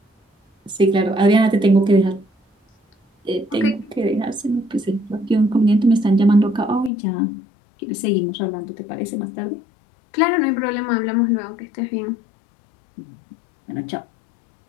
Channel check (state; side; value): drops out; right; at 6.9 s